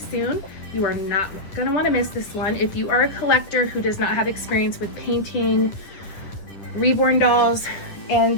You are not gonna want to miss this one. If you are a collector who does not have experience with painting Reborn dolls, and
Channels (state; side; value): late; right; 10 ms